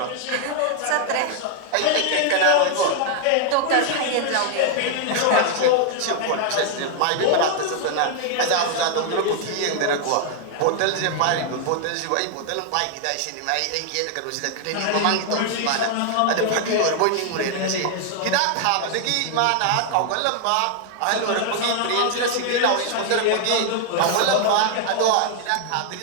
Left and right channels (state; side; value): different; both; correlation 0.00